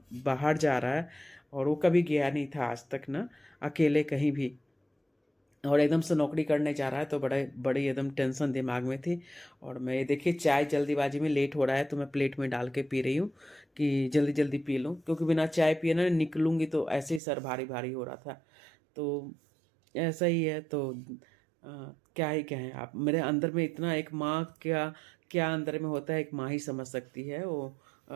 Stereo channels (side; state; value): left; drops out; at 17.2 s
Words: बाहर जा रहा है। और वो कभी गया नहीं था आज तक ना, अकेले कहीं भी। और एकदम से नौकरी करने जा रहा है तो बड़े बड़ी एकदम टेंशन दिमाग में थी। और मैं देखिए चाय जल्दीबाजी में लेट हो रहा है तो मैं प्लेट में डाल के पी रही हूँ कि जल्दी जल्दी पी लूँ, क्योंकि बिना चाय पिए ना निकलूँगी तो ऐसे ही सर भारी भारी हो रहा था। तो ऐसा ही है। तो क्या ही कहें, आप मेरे अंदर में इतना एक माँ क्या क्या अंदर में होता है, एक माँ ही समझ सकती है वो।